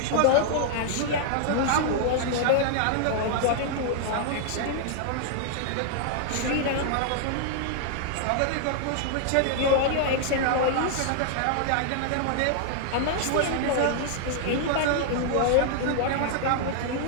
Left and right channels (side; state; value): both; different; correlation -0.01